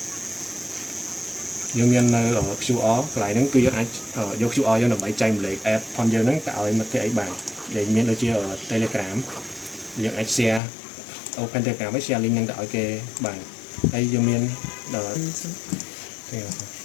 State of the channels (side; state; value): right; drops out; at 10.6 s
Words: យើងមាននៅ QR កន្លែងហ្នឹងគឺយើងអាចយក QR យើងដើម្បីចែកម្លែក app ផងយើងហ្នឹងទៅឲ្យមិត្តភក្តិអីបានដែលមានដូចជា Telegram យើងអាច share open Telegram ហើយ share link ហ្នឹងទៅឲ្យគេបានហើយយើងមាន